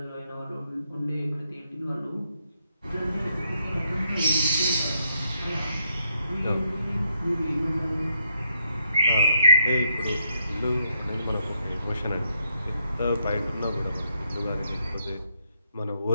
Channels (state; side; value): inverted; both; correlation -0.76